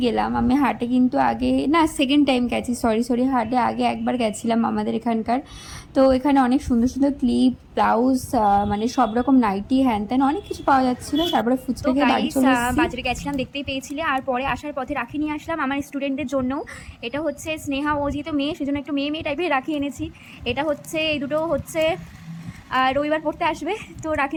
গেলাম। আমি হাটে কিন্তু আগে না, সেকেন্ড টাইম গেছি, সরি হাটে আগে একবার গেছিলাম আমাদের এখানকার। তো এখানে অনেক সুন্দর সুন্দর ক্লিপ, ব্লাউজ, মানে সব রকম নাইটি, হ্যান ত্যান অনেক কিছু পাওয়া যাচ্ছিলো। তারপরে ফুচকা খেয়ে বাড়ি চলে এসেছি। বাজারে গেছিলাম, দেখতেই পেয়েছিলে। আর পরে আসার পথে রাখি নিয়ে আসলাম আমার স্টুডেন্টদের জন্য। এটা হচ্ছে স্নেহা, ও যেহেতু মেয়ে সেজন্য একটু মেয়ে টাইপের রাখি এনেছি। এটা হচ্ছে, এই দুটো হচ্ছে রবিবার পড়তে আসবে, তো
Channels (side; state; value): both; identical; correlation 1.00